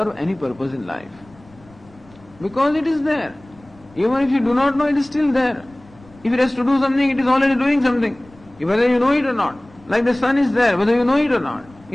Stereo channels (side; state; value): left; noise; rumble, 26 dB below the sound